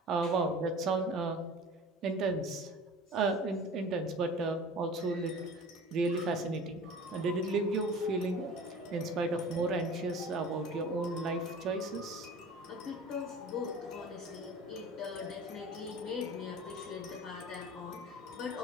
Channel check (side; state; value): both; normal; correlation 0.41